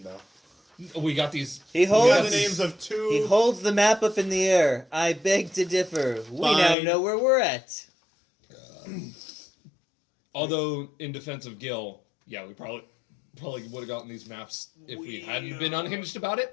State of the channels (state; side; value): drops out; right; at 6.8 s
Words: though. We got these. He We got holds the names of two. He holds the map up in the air. I beg to differ. We now Fine. know where we're at. Although, in defense of Gil, yeah, we probably would have gotten these maps if we hadn't been unhinged about